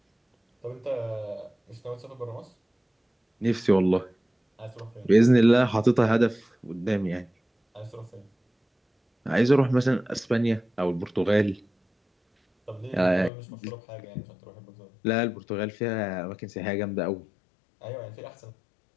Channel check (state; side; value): drops out; right; at 13.3 s